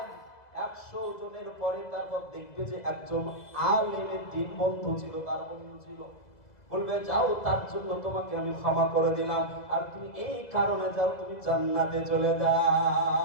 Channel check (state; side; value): late; right; 2.0 ms